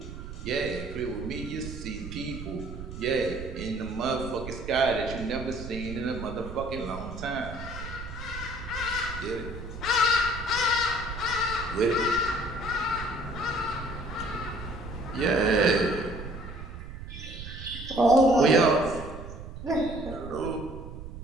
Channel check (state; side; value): noise; right; rumble, 10 dB below the sound